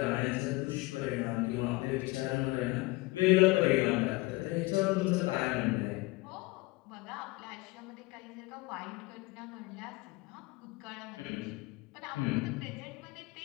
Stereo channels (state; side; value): quieter; right; 22.9 dB